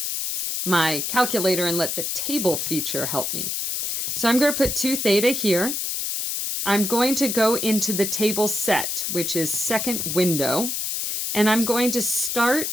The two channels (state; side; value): noise; left; hiss, 2 dB below the sound